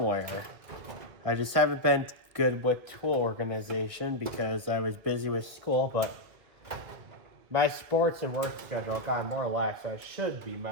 I just haven't been good with tool organization because I was busy with school, but my sports and work schedule got more relaxed, so I should be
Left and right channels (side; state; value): left; late; 1.9 ms